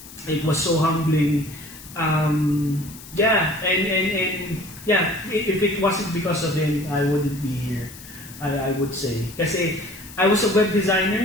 It was so humbling. If it wasn't because of him, I wouldn't be here, I would say. Kasi I was a web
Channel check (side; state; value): left; noise; hiss, 17 dB below the sound